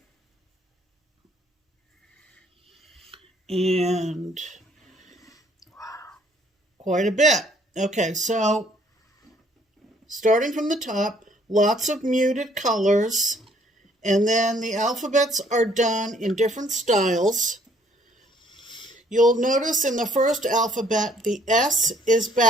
And quite a bit. Okay, so starting from the top, lots of muted colors. And then the alphabets are done in different styles. You'll notice in the first alphabet, the S is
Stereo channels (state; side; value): normal; both; correlation 0.63